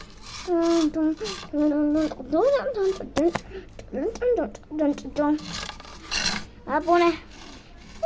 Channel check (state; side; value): identical; both; correlation 1.00